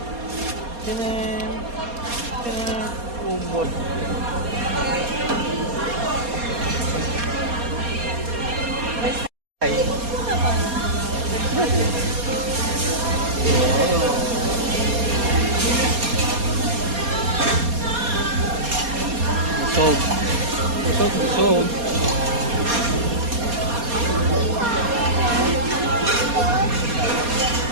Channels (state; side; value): late; left; 4.2 ms